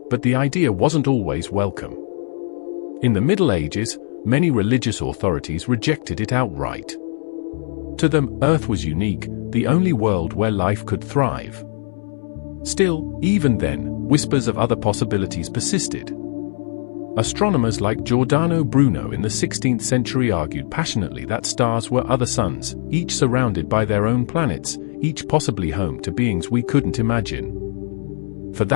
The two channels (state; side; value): silent; right; 58 dB below the other